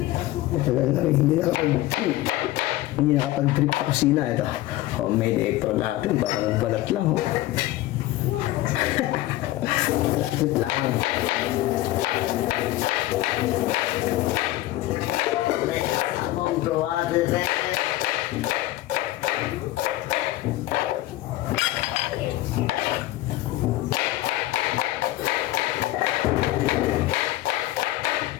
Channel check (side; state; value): right; quieter; 16.2 dB